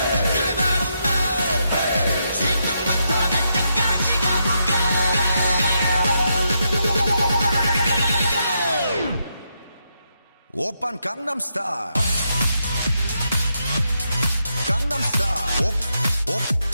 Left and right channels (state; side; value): inverted; both; correlation -0.81